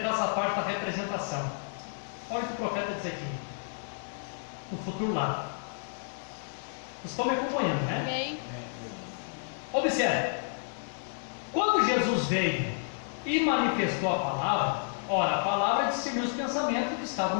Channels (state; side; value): silent; right; digital silence